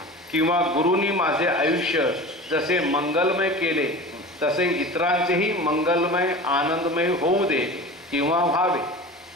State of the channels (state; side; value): normal; both; correlation 0.34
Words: किंवा गुरूंनी माझे आयुष्य जसे मंगलमय केले तसे इतरांचेही मंगलमय आनंदमय होऊ दे किंवा व्हावे.